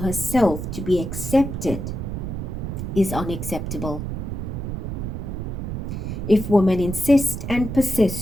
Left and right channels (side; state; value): right; noise; rumble, 4 dB below the sound